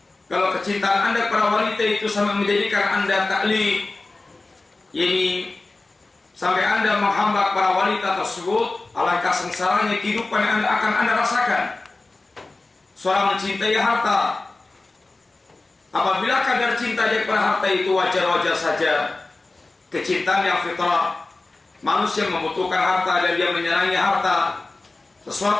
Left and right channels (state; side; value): quieter; right; 3.3 dB